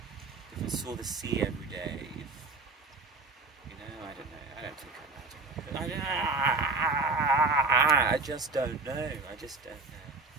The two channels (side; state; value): left; quieter; 3.8 dB